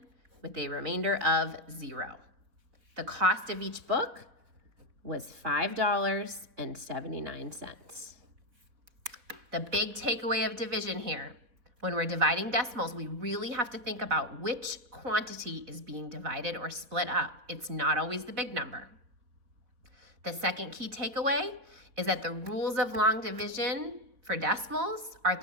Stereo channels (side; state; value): left; late; 4.3 ms